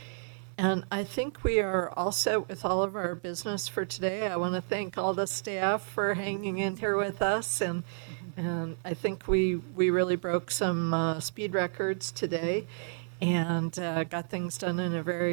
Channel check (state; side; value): silent; left; 57 dB below the other